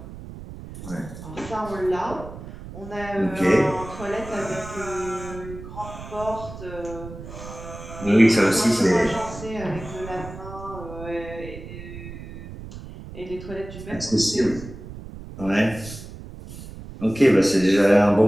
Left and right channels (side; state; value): right; noise; rumble, 13 dB below the sound